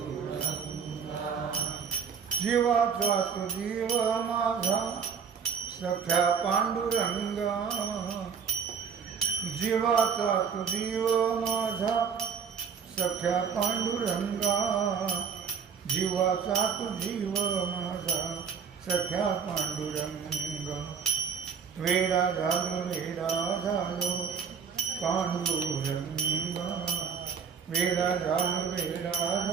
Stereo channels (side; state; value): left; quieter; 6.7 dB